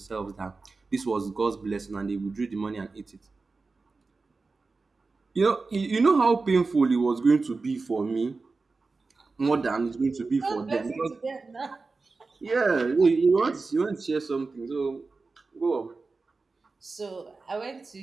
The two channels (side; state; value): left; quieter; 4.0 dB